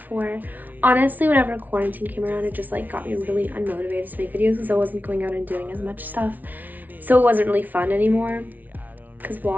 Honestly, whenever quarantine came around, it just like got me really unmotivated to make videos because I wasn't going out and doing as much stuff. So it wasn't really fun anymore because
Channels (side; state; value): left; late; 0.079 ms